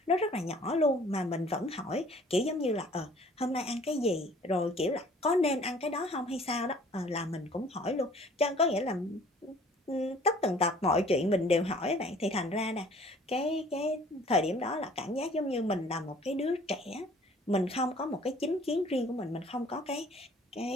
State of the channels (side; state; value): both; normal; correlation 0.54